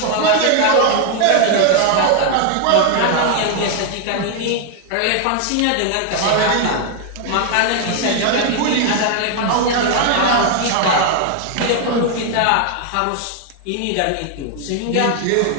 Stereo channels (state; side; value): different; both; correlation 0.00